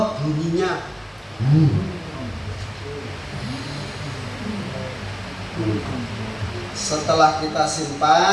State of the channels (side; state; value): both; identical; correlation 1.00